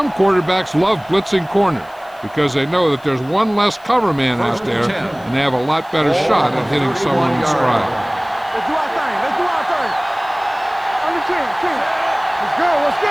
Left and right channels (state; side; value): noise; left; hiss, 29 dB below the sound